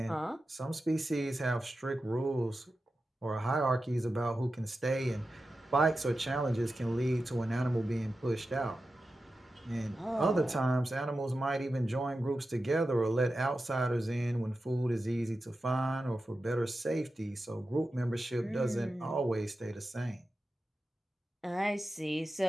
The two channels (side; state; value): both; normal; correlation 0.92